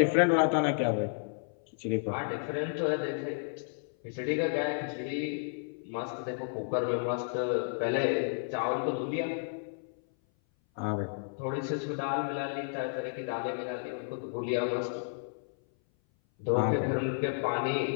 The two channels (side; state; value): right; silent; 56 dB below the other